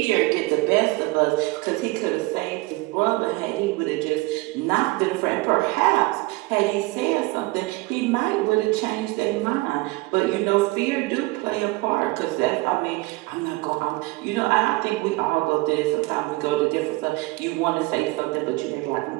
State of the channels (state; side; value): quieter; left; 22.4 dB